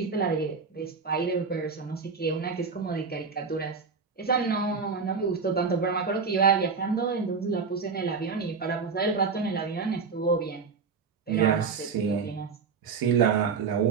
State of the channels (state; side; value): quieter; left; 5.3 dB